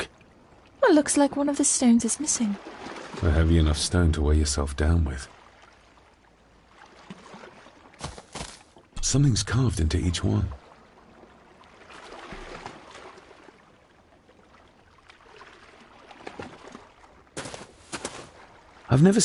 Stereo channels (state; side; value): identical; both; correlation 1.00